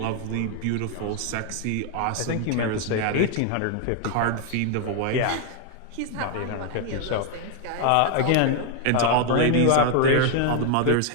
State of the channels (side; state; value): both; different; correlation 0.00